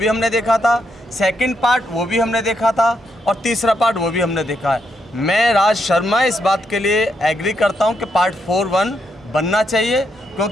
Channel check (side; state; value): both; normal; correlation 0.79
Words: हमने देखा था, सेकंड पार्ट वो भी हमने देखा था और तीसरा पार्ट वो भी हमने देखा है। मैं राज शर्मा इस बात के लिए एग्री करता हूं कि पार्ट 4 1 बनना चाहिए,